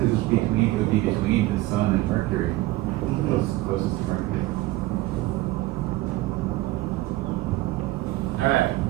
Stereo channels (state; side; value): quieter; left; 18.1 dB